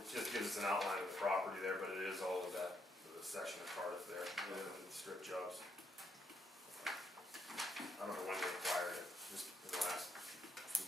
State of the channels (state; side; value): normal; both; correlation 0.76